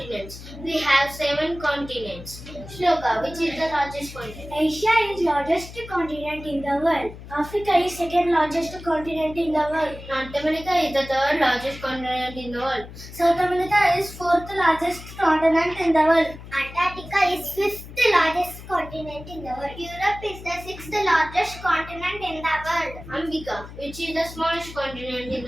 We have 7 continents. Shloka, which is the largest continent? Asia is largest continent in the world. Africa is second largest continent in the world. North America is the third largest continent in the world. South America is fourth largest continent in the world. Antarctica is fifth largest continent in the world. Europe is the sixth largest continent in the world. Ambika, which is the smallest continent in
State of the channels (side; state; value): left; noise; hum, 15 dB below the sound